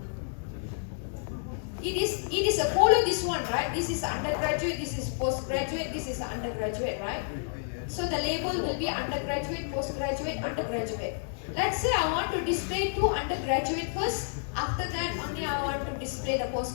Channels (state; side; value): silent; right; digital silence